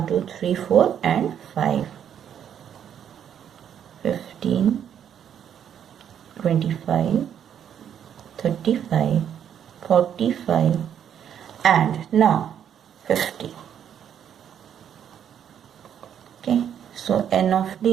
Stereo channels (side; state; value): left; quieter; 9.1 dB